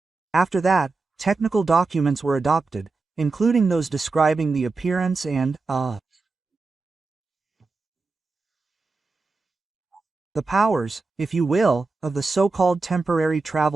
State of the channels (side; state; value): left; quieter; 3.8 dB